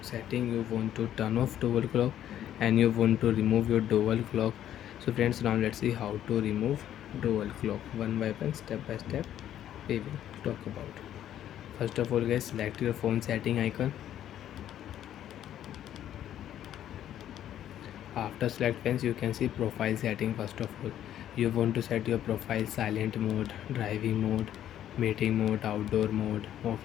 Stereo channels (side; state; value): right; quieter; 11.2 dB